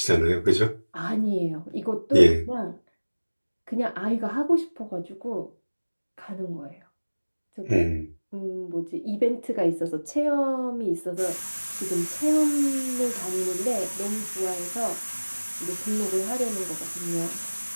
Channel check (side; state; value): both; inverted; correlation -1.00